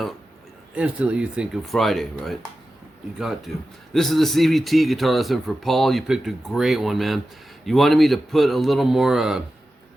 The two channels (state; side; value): normal; both; correlation 0.93